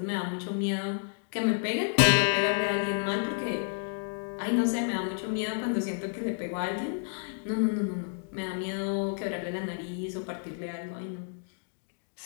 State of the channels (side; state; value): right; silent; digital silence